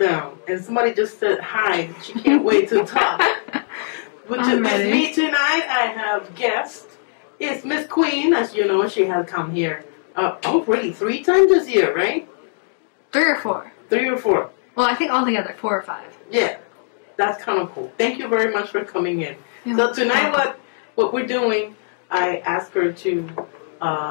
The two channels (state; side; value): silent; right; digital silence